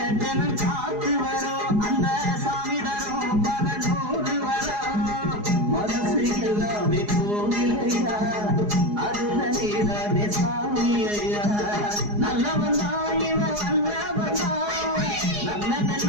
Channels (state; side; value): late; left; 4.8 ms